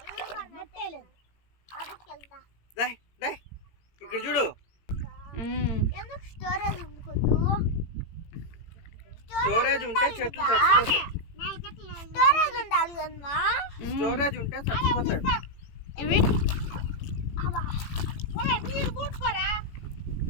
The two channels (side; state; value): right; late; 18 ms